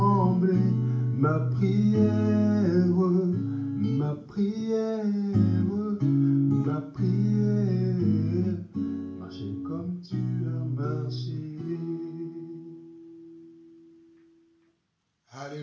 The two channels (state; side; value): identical; both; correlation 1.00